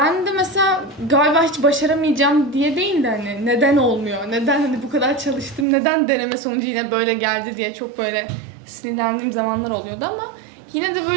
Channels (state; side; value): drops out; left; at 5.7 s